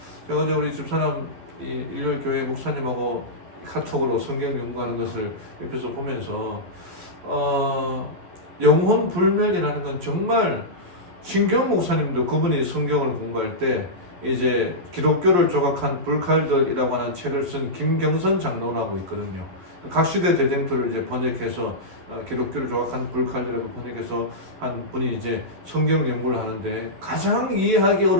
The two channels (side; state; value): left; late; 11 ms